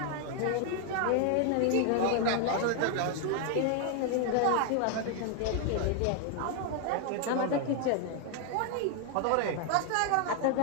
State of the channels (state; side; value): different; both; correlation 0.00